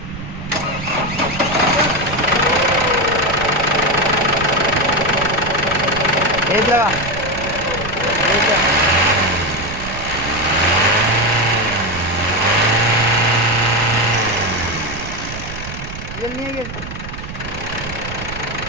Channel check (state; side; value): noise; right; rumble, 10 dB below the sound